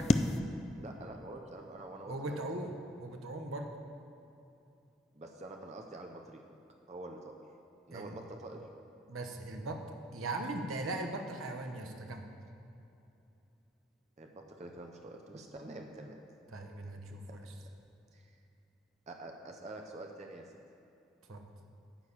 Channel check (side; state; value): both; normal; correlation 0.60